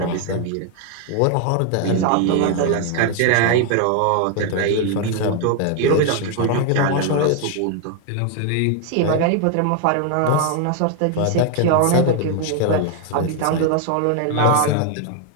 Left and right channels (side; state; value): both; different; correlation 0.01